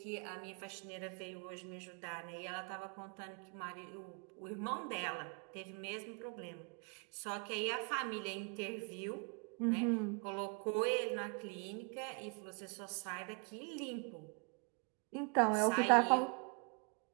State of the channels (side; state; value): left; quieter; 36.3 dB